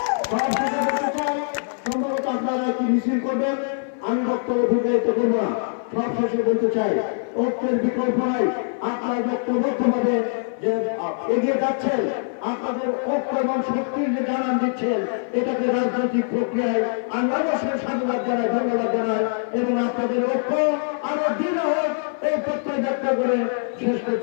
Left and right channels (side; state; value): right; silent; 55 dB below the other